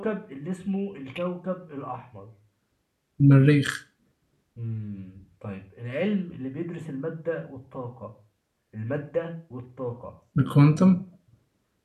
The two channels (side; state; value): both; identical; correlation 1.00